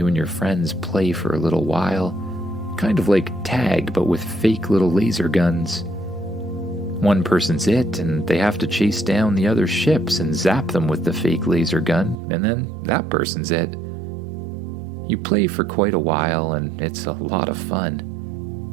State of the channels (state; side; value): drops out; left; at 12.2 s